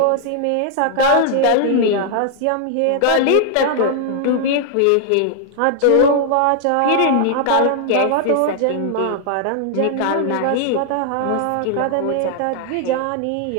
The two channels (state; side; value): different; both; correlation 0.00